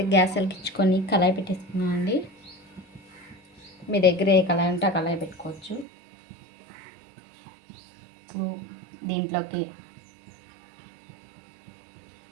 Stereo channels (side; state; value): left; drops out; at 5.9 s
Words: గ్యాస్ వెలిగించుకొని కళాయి పెట్టేసుకున్నామండి. మీ దగ్గర ఏ కళాయి ఉంటే ఆ కళాయి పెట్టుకోవచ్చు. ఇప్పుడు దీంట్లోకి